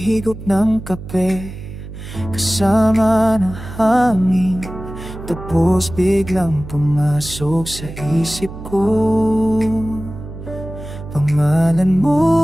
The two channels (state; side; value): noise; right; hum, 12 dB below the sound